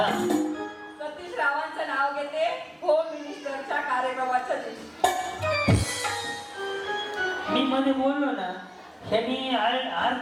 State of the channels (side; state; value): both; identical; correlation 1.00